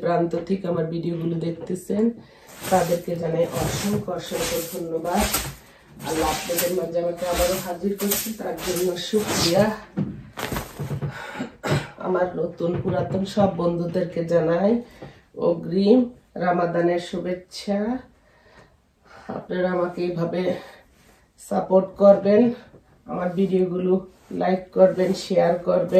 প্রান্ত থেকে আমার ভিডিওগুলো দেখতেছেন তাদেরকে জানাই অসংখ্য অসংখ্য ধন্যবাদ। আল্লাহ আপনাদের মাঝে আমাকে আবারও হাজির করছি, তার জন্য শুকরিয়া। আমার নতুন পুরাতন সব বন্ধুদেরকে জানাই অগ্রিম রামাদানের শুভেচ্ছা। আপনারা আমাকে এইভাবে সাপোর্ট করবেন, আমার ভিডিওগুলো লাইক করবেন, শেয়ার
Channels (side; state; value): both; identical; correlation 1.00